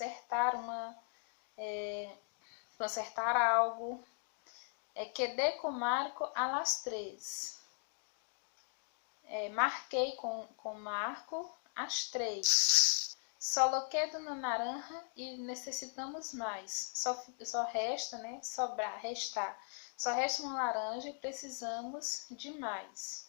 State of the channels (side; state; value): right; silent; 52 dB below the other